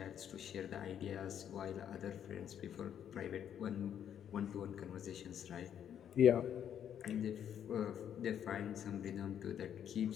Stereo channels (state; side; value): quieter; right; 9.3 dB